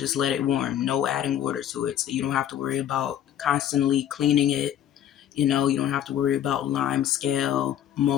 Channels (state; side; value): quieter; right; 10.8 dB